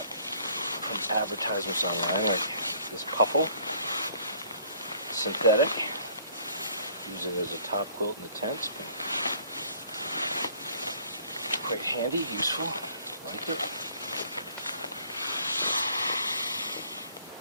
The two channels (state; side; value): inverted; both; correlation -0.58